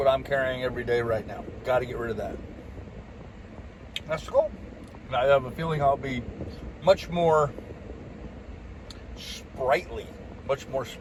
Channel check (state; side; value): identical; both; correlation 1.00